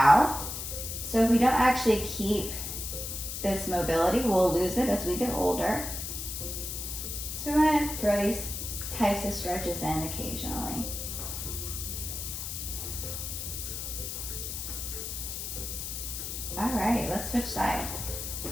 So if we don't actually keep this mobility, we'll lose it as we get older. So we're going to throw these types of stretches in occasionally. All right, let's switch sides.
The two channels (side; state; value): left; noise; hiss, 5 dB below the sound